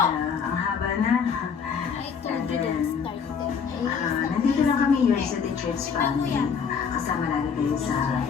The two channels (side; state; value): right; quieter; 6.4 dB